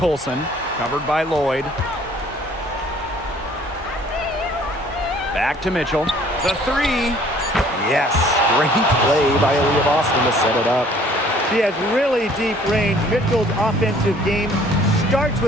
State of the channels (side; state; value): both; normal; correlation 0.56